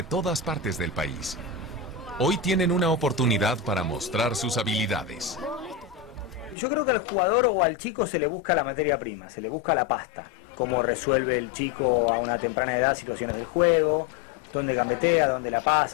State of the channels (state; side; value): drops out; right; at 6.6 s